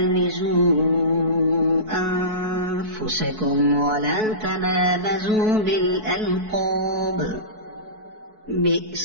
أنفسكم ولا تنابزوا بالألقاب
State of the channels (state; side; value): late; left; 4.6 ms